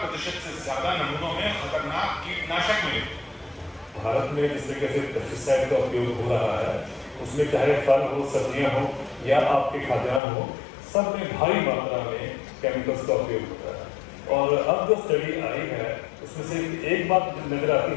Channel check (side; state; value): right; drops out; at 10.2 s